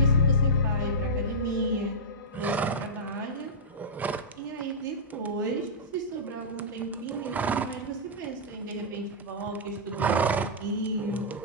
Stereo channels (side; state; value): both; normal; correlation -0.11